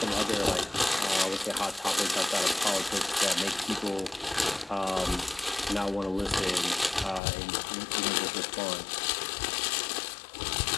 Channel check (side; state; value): right; drops out; at 7.2 s